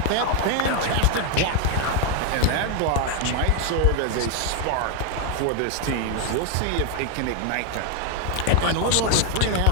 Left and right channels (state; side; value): different; both; correlation 0.01